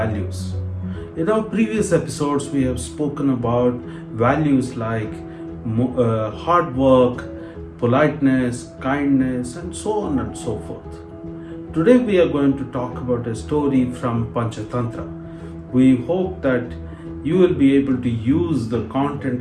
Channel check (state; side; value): identical; both; correlation 1.00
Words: In our previous episodes, we have spoken about values like hard work, politeness, kindness, and so on and so forth. Today we are going to talk about a story from Panchatantra. We hope that you will be able to use the